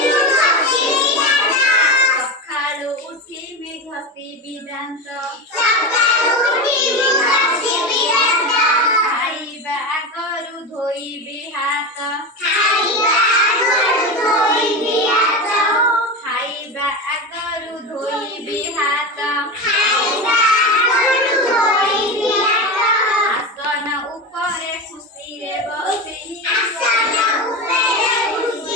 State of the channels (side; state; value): both; normal; correlation 0.21